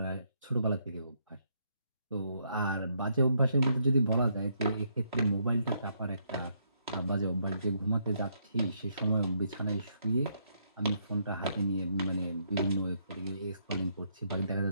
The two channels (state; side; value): inverted; both; correlation -0.74